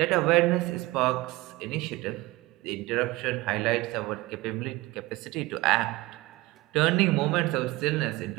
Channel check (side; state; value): left; quieter; 20.5 dB